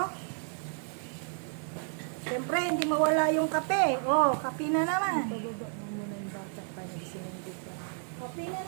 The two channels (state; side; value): silent; left; 57 dB below the other